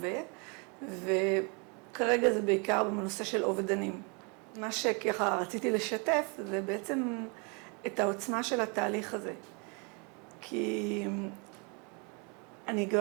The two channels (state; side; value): quieter; left; 33.4 dB